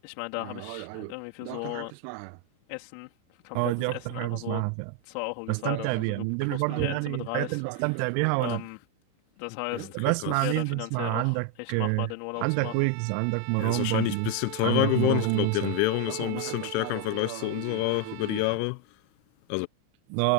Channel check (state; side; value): different; both; correlation 0.01